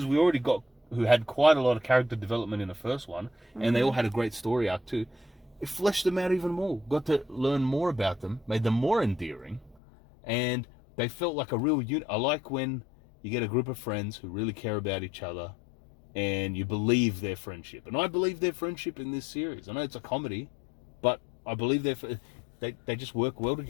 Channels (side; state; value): right; drops out; at 9.8 s